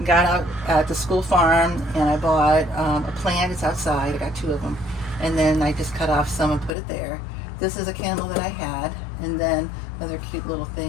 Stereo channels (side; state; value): right; drops out; at 6.7 s